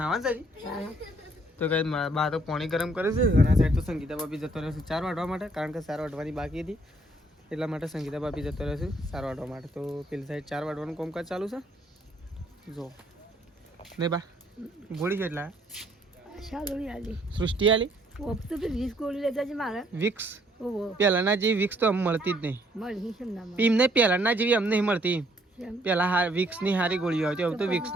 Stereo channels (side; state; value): both; normal; correlation 0.66